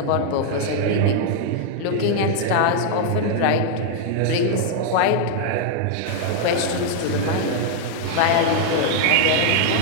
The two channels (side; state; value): both; different; correlation -0.01